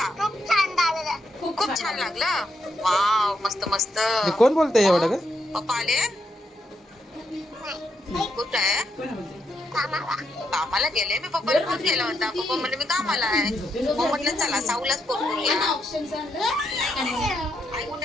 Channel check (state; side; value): normal; both; correlation 0.79